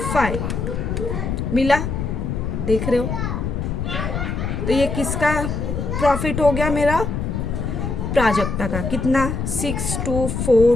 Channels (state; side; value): noise; left; rumble, 2 dB below the sound